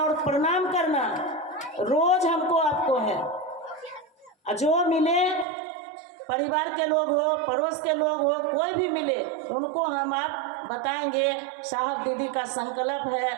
और प्रणाम करना रोज हमको आपको है। जो मिले, परिवार के लोग हो, पड़ोस के लोग हो, कोई भी मिले, उनको हम आप बताएंगे साहब दीदी का संकल्प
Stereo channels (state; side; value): drops out; left; at 5.5 s